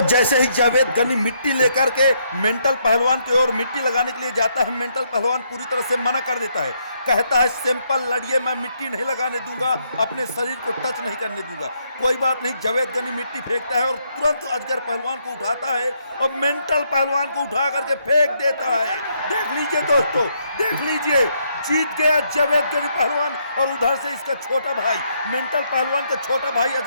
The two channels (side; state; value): both; inverted; correlation -0.74